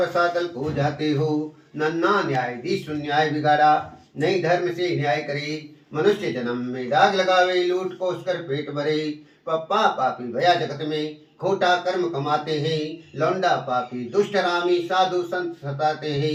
खो जाते हो। नन्ना न्यायाधीश न्याय बिगाड़ा, नहीं धर्म से न्याय करे। मनुष्य जन्म में दाग लगावे, लूट कोस कर पेट भरे। पप्पा पापी भया जगत में, खोटा कर्म कमाते हैं। लौंडा पापी दुष्ट रामी, साधु संत सताते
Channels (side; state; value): both; identical; correlation 1.00